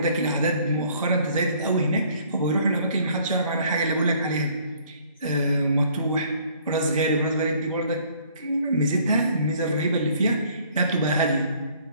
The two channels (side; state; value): both; inverted; correlation -0.59